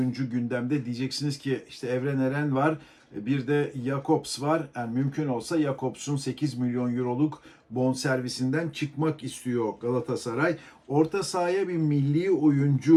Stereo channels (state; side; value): identical; both; correlation 1.00